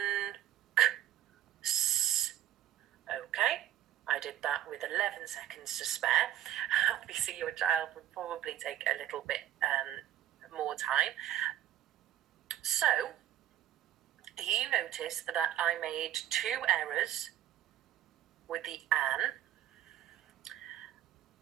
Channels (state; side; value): quieter; left; 12.1 dB